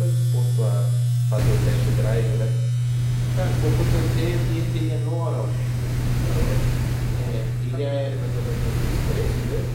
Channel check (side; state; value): both; identical; correlation 1.00